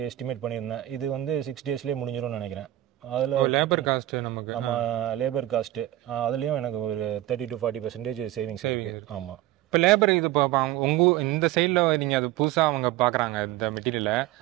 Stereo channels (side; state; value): left; quieter; 15.0 dB